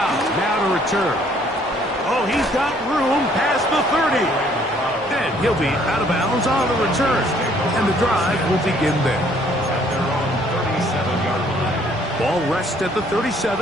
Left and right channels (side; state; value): both; normal; correlation 0.62